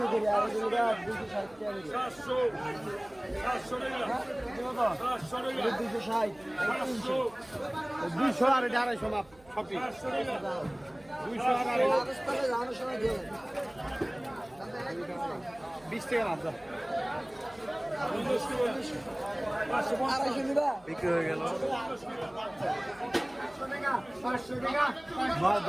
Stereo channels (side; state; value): right; noise; hum, 26 dB below the sound